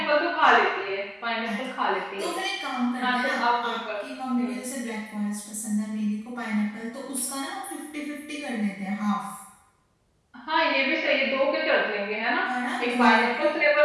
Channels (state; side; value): identical; both; correlation 1.00